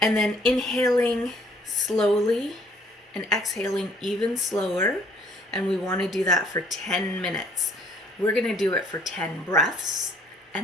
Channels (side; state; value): both; normal; correlation 0.61